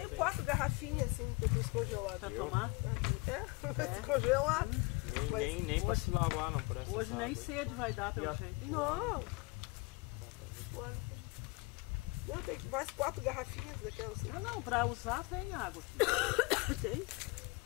tem. 4 garrafinhas assim, que eu fiz congelado. Pra Eu? tomar. É, descongelado. Nem pra se lavar, não, por essa Hoje nem água aí. sede vai dar E pelo a- jeito. Não. Não, tem mais 4 garrafinhas daquelas assim. Não, pra usar tem água aqui. Tem?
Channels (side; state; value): right; quieter; 25.6 dB